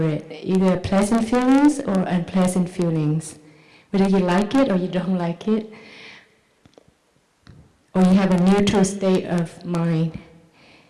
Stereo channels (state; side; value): identical; both; correlation 1.00